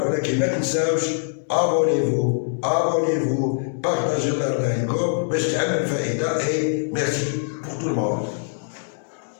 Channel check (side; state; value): right; silent; digital silence